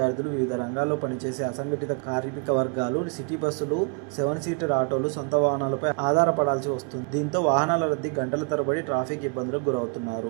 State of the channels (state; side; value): quieter; left; 35.8 dB